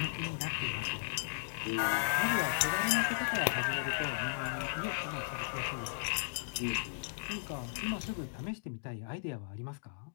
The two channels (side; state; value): right; silent; digital silence